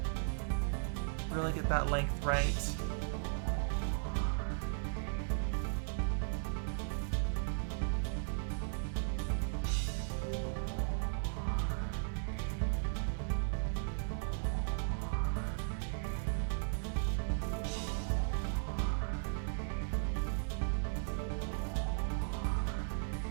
Really get that length right.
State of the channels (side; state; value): left; silent; 53 dB below the other